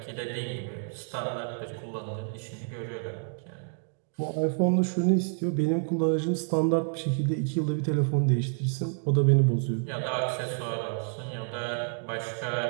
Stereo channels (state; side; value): silent; left; 59 dB below the other